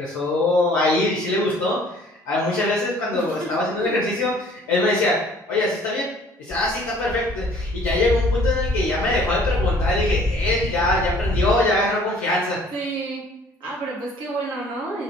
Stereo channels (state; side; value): normal; both; correlation 0.55